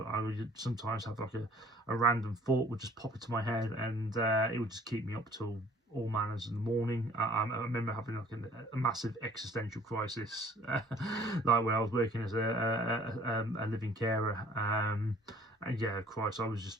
would sometimes have like a random thought would just pop into my head, and it would just keep me up till all manners in the morning. I remember having like a massive existential crisis, like when I was working as a living carer. And yeah, Christ, I was just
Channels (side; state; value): both; normal; correlation 0.54